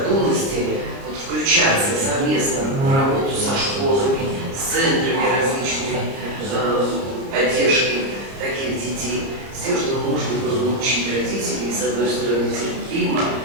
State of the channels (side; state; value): left; late; 30 ms